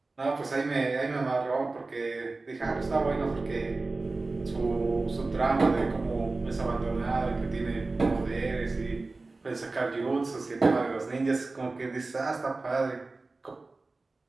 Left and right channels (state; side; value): quieter; left; 3.4 dB